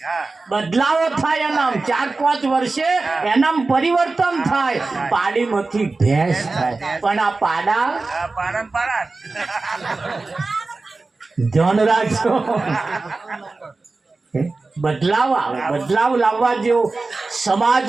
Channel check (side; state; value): left; quieter; 3.6 dB